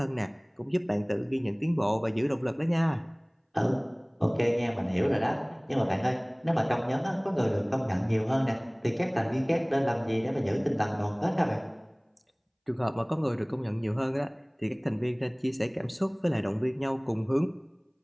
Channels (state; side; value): identical; both; correlation 1.00